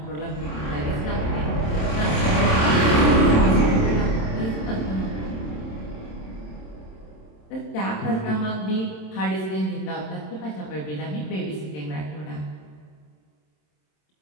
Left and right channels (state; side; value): late; right; 27 ms